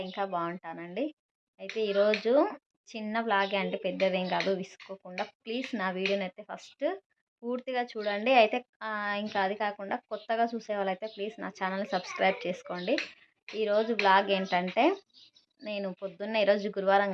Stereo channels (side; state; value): both; identical; correlation 1.00